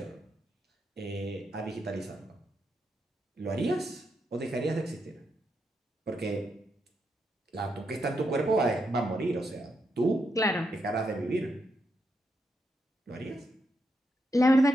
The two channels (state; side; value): normal; both; correlation 0.82